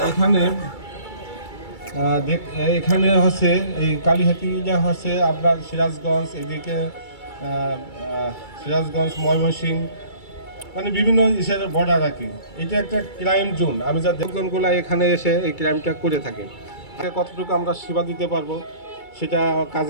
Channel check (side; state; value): right; late; 2.3 ms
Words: এখানে হচ্ছে এই কালিহাতীটা হচ্ছে আপনার সিরাজগঞ্জ, এদিকে সিরাজগঞ্জ, ময়মনসিংহ, মানে বিভিন্ন দেশের বর্ডার আর কি। এটা একটা ক্রাইম জোন। আমি যা জনগুলো এখানে এসে এই ক্রাইমটা করে থাকে, কতটুকু আমরা সেবা দিতে পারবো সেটা